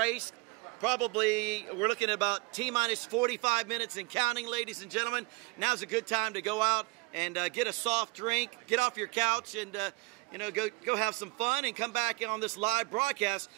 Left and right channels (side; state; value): left; quieter; 26.7 dB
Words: Probably, we're looking at about T-minus 45 minutes and counting, ladies and gentlemen. Now's a good time to go out and get a soft drink, get off your couch, and go have some fun and come back on this live broadcast